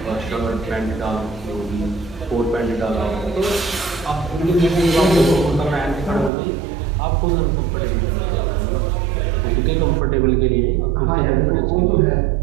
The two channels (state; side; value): drops out; left; at 6.3 s